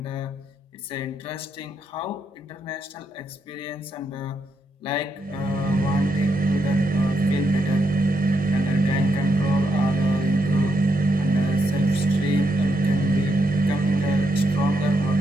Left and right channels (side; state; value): both; normal; correlation 0.80